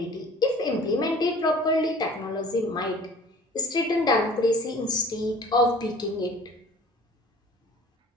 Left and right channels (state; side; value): normal; both; correlation 0.47